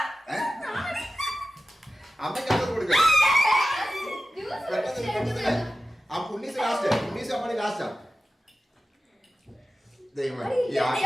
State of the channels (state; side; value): normal; both; correlation 0.95